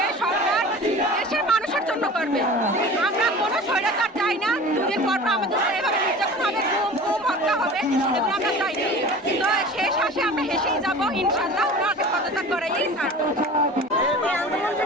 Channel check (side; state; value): both; normal; correlation 0.39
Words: সরকার দেশের মানুষের জন্য করবে। আমরা কোনো স্বৈরাচার চাই না। দুদিন পর আমাদের এভাবে নির্যাতন হবে, গুম হত্যা হবে, এগুলো আমরা চাই না। তো শেষ হাসি আমরা হেসেই যাবো ইনশাল্লাহ। ওনাকে পদত্যাগ করাই ছাড়বো। আন্দোলন